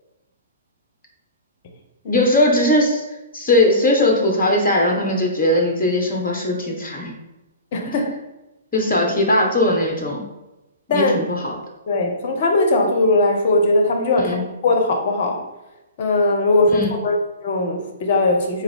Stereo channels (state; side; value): inverted; both; correlation -0.38